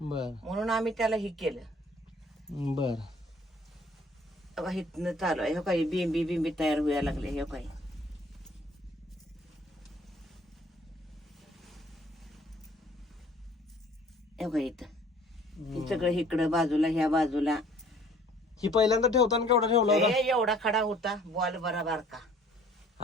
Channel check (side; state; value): both; normal; correlation 0.55